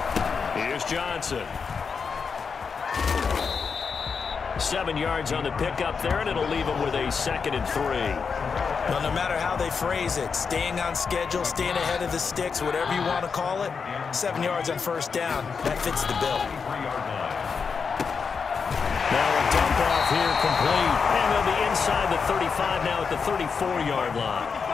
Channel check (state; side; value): quieter; right; 5.6 dB